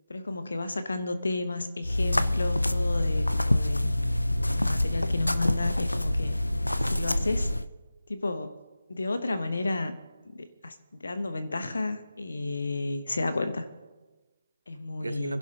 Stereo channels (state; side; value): inverted; both; correlation -0.96